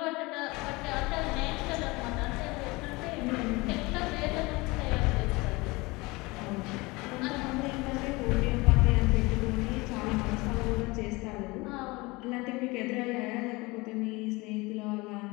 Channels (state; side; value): quieter; right; 23.7 dB